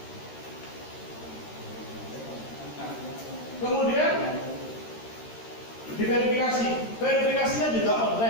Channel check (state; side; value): late; right; 13 ms